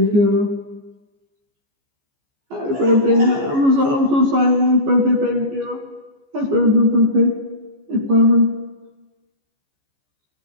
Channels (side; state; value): left; late; 14 ms